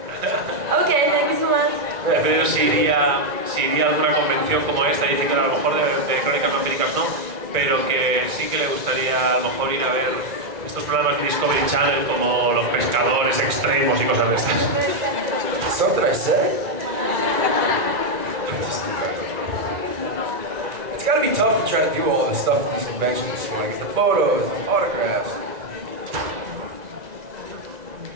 Okay, thank you so much. Pero si iría a alguna convención como esta, dice que a lo mejor de crónicas vampíricas no, pero que sí que le gustaría a lo mejor ir a ver estos programas de Discovery Channel como Los Pescadores Extremos y cosas de estas. Something I said? It's gotta be tough to try to do all this stuff at these conventions. You want to get the photos, autographs.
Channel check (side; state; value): left; late; 1.9 ms